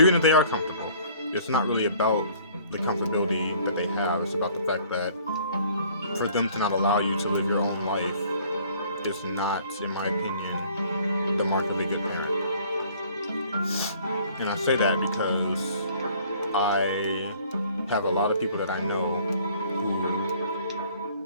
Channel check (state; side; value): inverted; both; correlation -0.55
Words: if they are comfortable, it's not really about the comfortability that they have. It's about the fact that for them to not allow you to live your own life is not, in my opinion, the mark of a good parent. And I say that because I have a lot of people that I know who